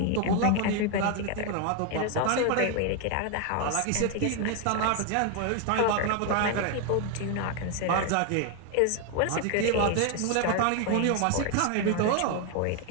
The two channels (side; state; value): both; different; correlation 0.01